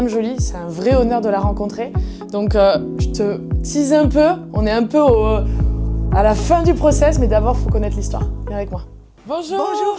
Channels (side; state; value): both; identical; correlation 1.00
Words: Jolie, c'est un vrai honneur de la rencontrer. Donc je te tease un peu, on est un peu à la fin du process mais d'abord il faut connaître l'histoire. Viens avec moi. Bonjour. Bonjour